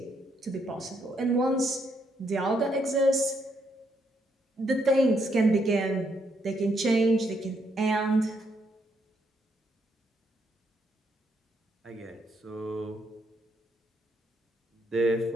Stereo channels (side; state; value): both; normal; correlation 0.75